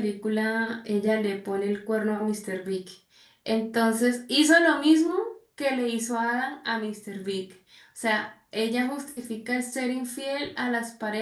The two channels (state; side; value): identical; both; correlation 1.00